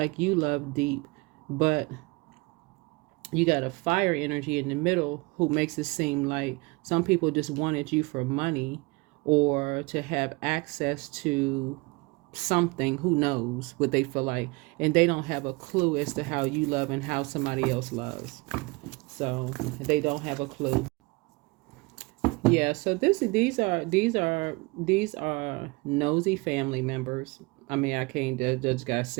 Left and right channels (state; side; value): quieter; left; 25.8 dB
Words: you love deep, but you got a fire energy in the middle who makes it seem like some people just wanted you for money or to have access to something. Who knows what they feel like, and they don't have a clue as to how you love and how somebody else loves. So they don't have a clue. Yeah, so these are nosy family members. I mean, I can't just gotta